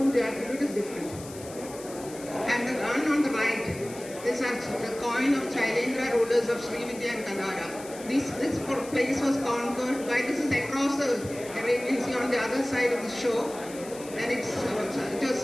the attribute is different. And the one on the right is the coin of Shailendra rulers of Sri Vijaya and Kadara. This place was conquered by, this is across the Arabian Sea on the other side of the shore, and it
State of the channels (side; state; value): left; noise; hiss, 16 dB below the sound